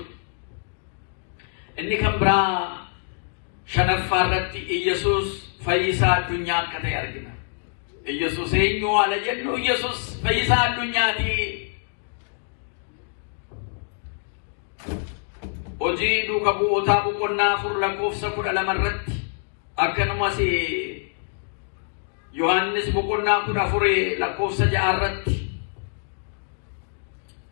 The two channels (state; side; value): silent; right; 62 dB below the other